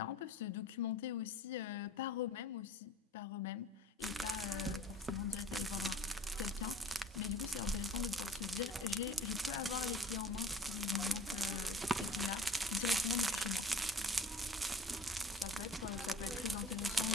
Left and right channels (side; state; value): both; normal; correlation 0.46